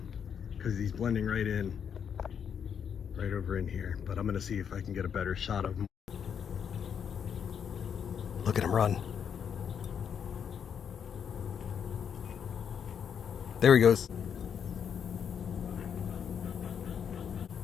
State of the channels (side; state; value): right; quieter; 7.6 dB